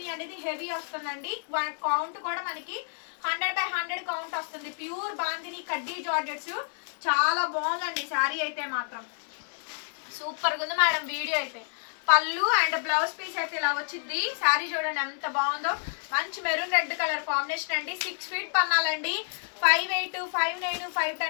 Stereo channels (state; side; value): silent; right; digital silence